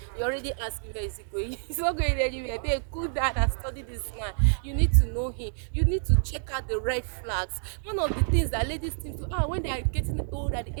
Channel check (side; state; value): left; silent; digital silence